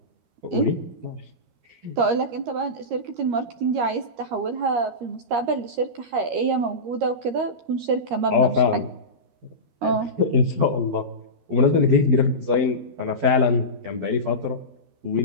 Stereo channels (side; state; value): left; late; 13 ms